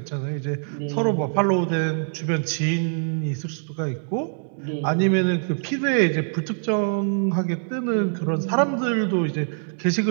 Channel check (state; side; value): silent; left; digital silence